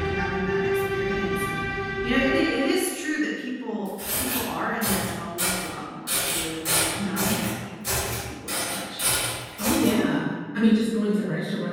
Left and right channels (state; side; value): identical; both; correlation 1.00